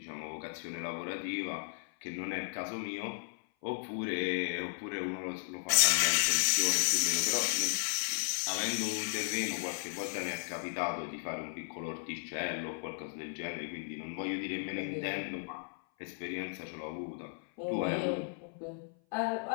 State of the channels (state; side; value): silent; right; 54 dB below the other